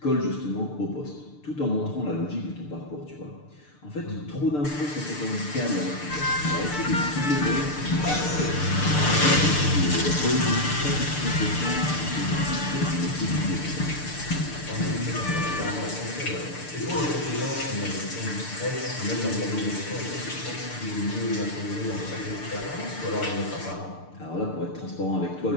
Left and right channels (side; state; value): right; late; 6.7 ms